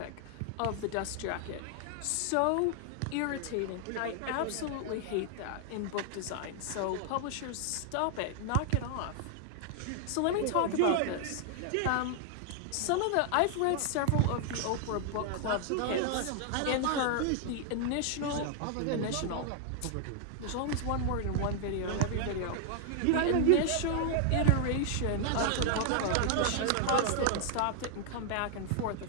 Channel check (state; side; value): different; both; correlation 0.00